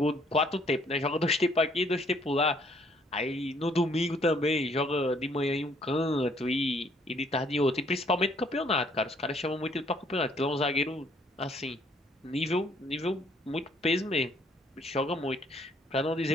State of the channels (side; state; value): both; normal; correlation 0.64